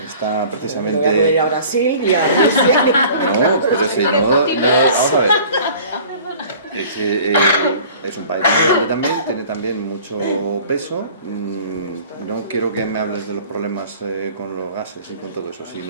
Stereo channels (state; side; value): inverted; both; correlation -0.47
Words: está precisamente... Voy a ir a Brasil y a Rusia. No, pero si no, vamos a ver. Es un país grande también, tiene también mucho peso. No quiero que me hables de los problemas con los gases y con todo eso,